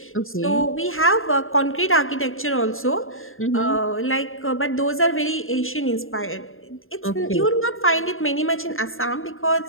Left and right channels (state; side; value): late; right; 0.60 ms